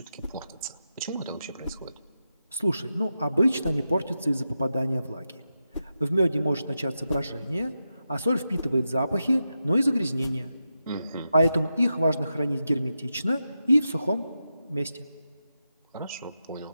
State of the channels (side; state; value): both; inverted; correlation -0.89